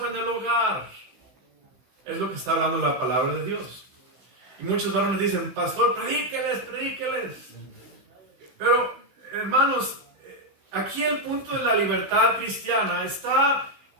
en el hogar. Es lo que está hablando la palabra de Dios. Y muchos varones dicen, pastor, predíqueles. Pero, hermanos, aquí el punto de la libertad cristiana está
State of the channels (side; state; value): left; late; 15 ms